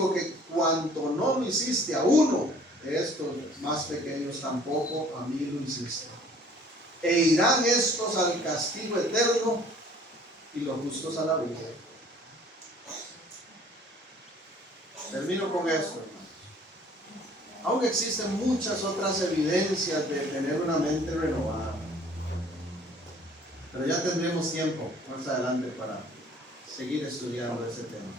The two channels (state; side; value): normal; both; correlation 0.54